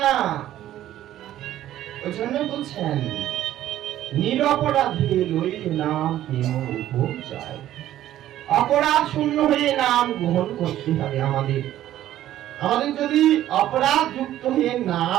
না। ওই জন্য বলছেন নিরপরাধে লইলে নাম প্রেম উপচায়। অপরাধ শূন্য হয়ে নাম গ্রহণ করতে হবে। আমাদের যদি অপরাধ যুক্ত হয়ে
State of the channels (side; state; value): left; quieter; 12.9 dB